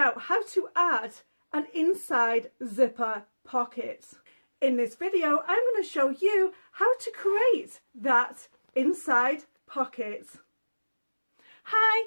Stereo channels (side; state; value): both; inverted; correlation -1.00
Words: how to add an inside zipper pocket. In this video, I'm going to show you how to create that inside pocket. Hi,